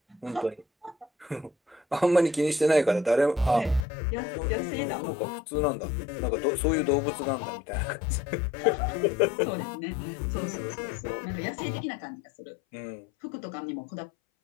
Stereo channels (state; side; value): drops out; right; at 3.9 s